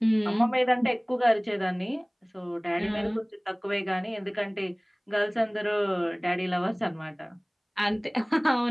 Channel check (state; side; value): identical; both; correlation 1.00